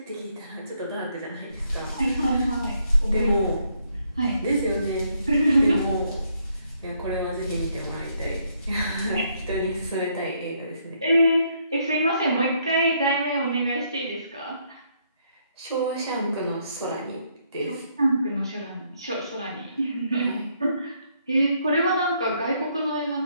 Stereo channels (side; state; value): both; inverted; correlation -0.72